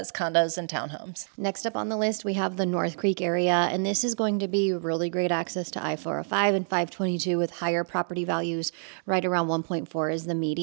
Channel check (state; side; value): silent; left; digital silence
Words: condos and townhomes. Next up on the list, we have the North Creek area, and this is going to be really great access to I-405 and 522 with higher property values. Right around 1.4 is the